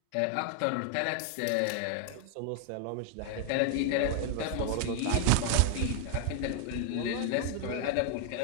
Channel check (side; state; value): both; different; correlation 0.00